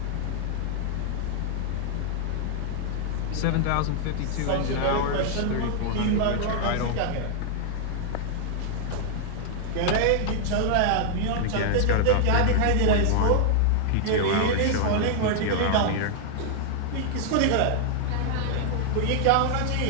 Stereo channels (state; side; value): different; both; correlation -0.01